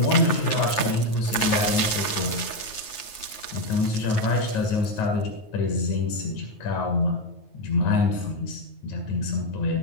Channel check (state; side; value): late; right; 9.3 ms